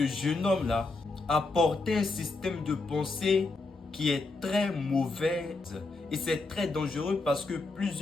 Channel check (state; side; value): quieter; right; 3.5 dB